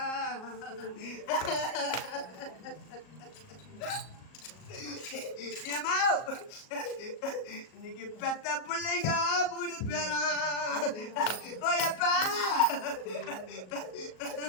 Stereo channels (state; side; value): late; right; 38 ms